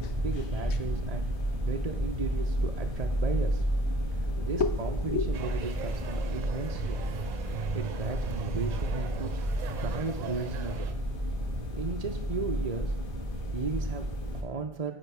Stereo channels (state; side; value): late; left; 1.3 ms